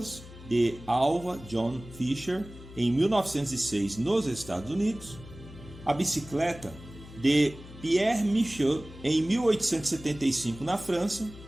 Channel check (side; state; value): left; noise; hum, 17 dB below the sound